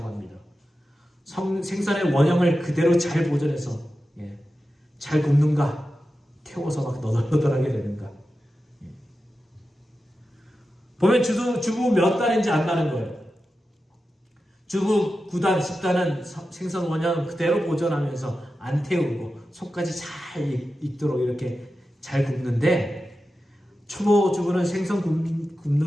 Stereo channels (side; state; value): both; normal; correlation 0.92